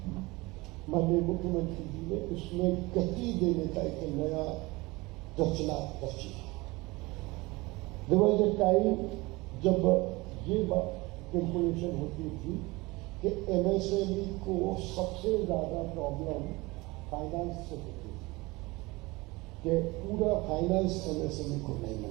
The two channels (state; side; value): quieter; left; 22.8 dB